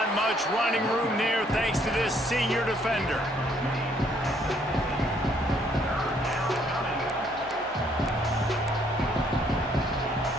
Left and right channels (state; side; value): normal; both; correlation 0.67